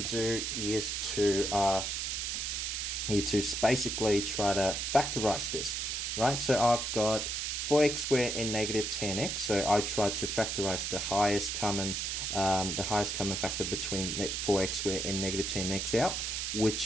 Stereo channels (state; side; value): noise; right; hiss, 2 dB below the sound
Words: do is to basically try to factorize this, right? So I've got 4x squared and negative 10x. So I try to factorize the highest common factor between 4x squared and negative 10x out,